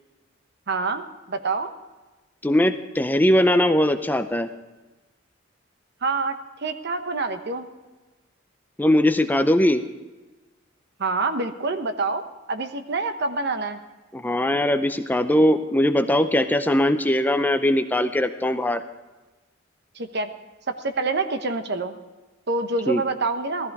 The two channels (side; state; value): both; normal; correlation 0.60